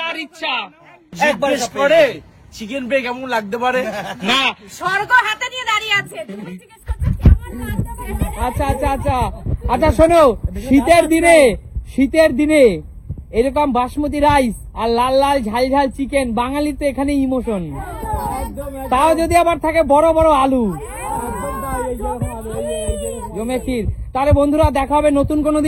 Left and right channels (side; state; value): both; identical; correlation 1.00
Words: ইচ্ছা। জিজ্ঞেস করে চিকেন পেয়ে কেমন লাগতে পারে। না, স্বর্গ হাতে নিয়ে দাঁড়িয়ে আছে, তুমি জিজ্ঞেস করছো কেমন লাগতে পারে? আচ্ছা আচ্ছা আচ্ছা আচ্ছা, শোনো, শীতের দিনে এরকম বাসমতি রাইস আর লাল লাল ঝাল ঝাল চিকেন, বাঙালির তো এখানে ইমোশন। তাও যদি আবার থাকে বড় বড় আলু, জমে ক্ষীর। তাহলে বন্ধুরা দেখা হবে নতুন কোনো